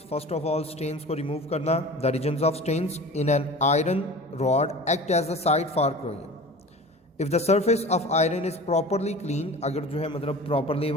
First of all stains को रिमूव करना। The reasons of stains in an iron rod act as the site for corrosion. If the surface of iron is properly clean, अगर जो है मतलब प्रॉपरली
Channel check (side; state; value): both; normal; correlation 0.38